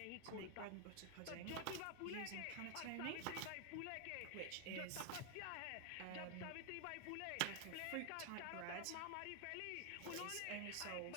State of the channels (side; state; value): both; different; correlation 0.00